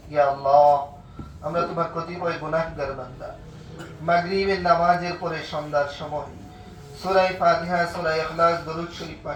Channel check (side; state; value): both; identical; correlation 1.00